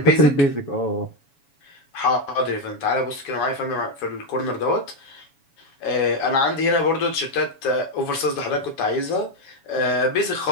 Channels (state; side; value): late; right; 7.1 ms